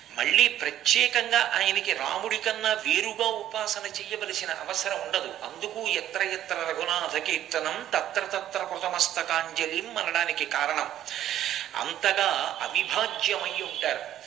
మళ్ళీ ప్రత్యేకంగా ఆయనకి రాముడి కన్నా వేరుగా ఉపాసన చెయ్యవలసిన అవసరం ఉండదు. అందుకు ఎత్ర ఎత్ర రఘునాథ కీర్తనం తత్ర తత్ర కృతమస్తకాంజలిం అనడానికి కారణం. అంతగా అవిభాజ్యమై ఉంటారు.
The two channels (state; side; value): quieter; left; 11.8 dB